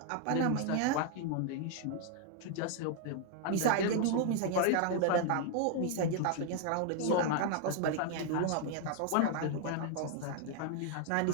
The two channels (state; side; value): different; both; correlation 0.00